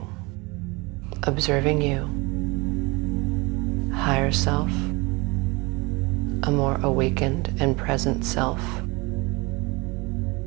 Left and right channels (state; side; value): quieter; left; 25.7 dB